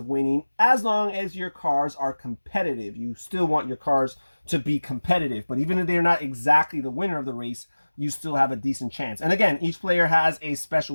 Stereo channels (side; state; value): both; inverted; correlation -1.00